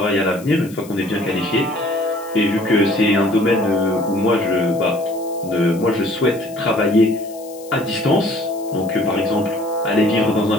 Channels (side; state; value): left; noise; hiss, 21 dB below the sound